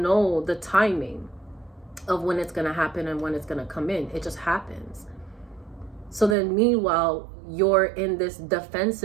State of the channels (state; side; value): drops out; left; at 6.4 s